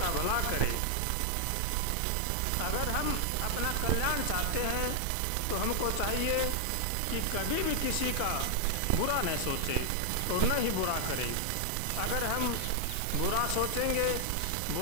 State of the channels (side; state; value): both; different; correlation 0.00